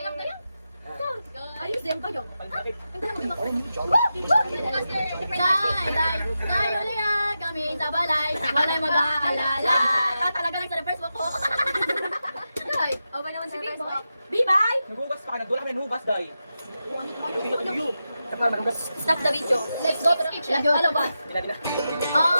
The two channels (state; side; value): inverted; both; correlation -0.90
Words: Ayos din kayo. Day, uliya kami sa balay. Walay mag-aalala. Talaga lang sa first walk ko. Day, okay naman si Facebook. Bye-bye! Naghugas pa ka, nagdula kami naghugas, day. Stop the video. Let's go to the kitchen. Hello, boss.